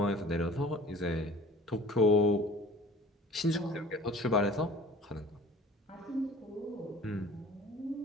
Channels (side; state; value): both; normal; correlation 0.46